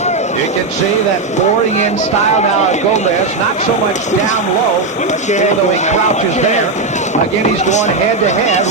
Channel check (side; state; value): left; quieter; 3.5 dB